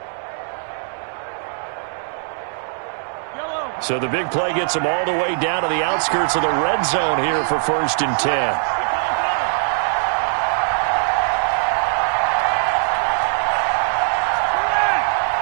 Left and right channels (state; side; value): silent; left; 65 dB below the other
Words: So the big play gets them all the way down to the outskirts of the red zone here for 1st and 10.